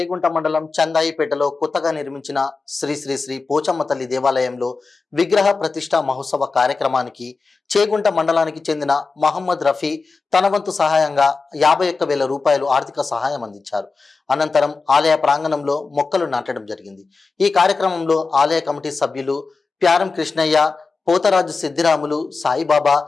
మండలం చందాయిపేటలో కొత్తగా నిర్మించిన శ్రీ శ్రీ శ్రీ పోచమ్మ తల్లి దేవాలయంలో విగ్రహ ప్రతిష్ఠ మహోత్సవ కార్యక్రమానికి చేగుంట మండలానికి చెందిన మహమ్మద్ రఫీ తన వంతు సహాయంగా 51,000 రూపాయలు ఆర్థిక సహాయం అందించారు. అనంతరం ఆలయ ప్రాంగణంలో మొక్కలు నాటడం జరిగింది. ఈ కార్యక్రమంలో ఆలయ కమిటీ సభ్యులు ప్యారం కృష్ణయ్య, పోతరాజు సిద్ధిరాములు, సాయిబాబా,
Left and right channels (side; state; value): right; quieter; 4.4 dB